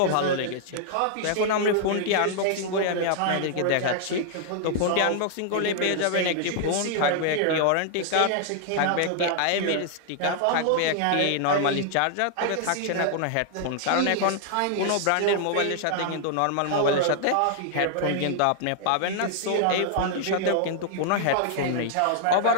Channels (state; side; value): different; both; correlation -0.01